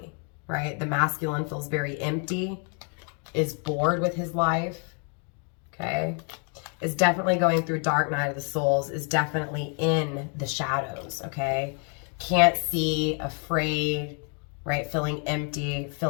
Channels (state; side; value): quieter; right; 39.2 dB